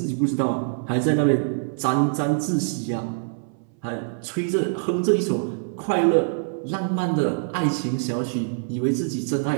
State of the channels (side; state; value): left; silent; 62 dB below the other